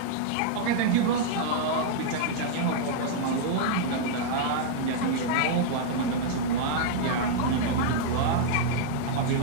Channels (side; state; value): both; different; correlation -0.01